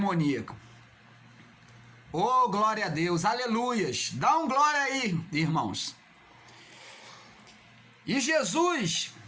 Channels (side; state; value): both; identical; correlation 1.00